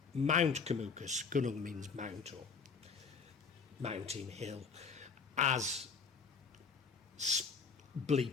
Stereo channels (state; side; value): quieter; right; 5.3 dB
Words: Mount Kumukus, Gunung means mount or mountain hill, as